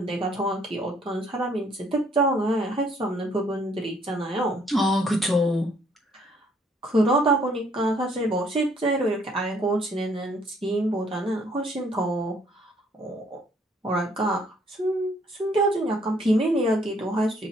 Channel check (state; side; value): normal; both; correlation 0.64